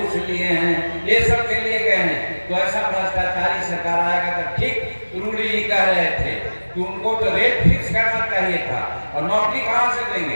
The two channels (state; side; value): inverted; both; correlation -1.00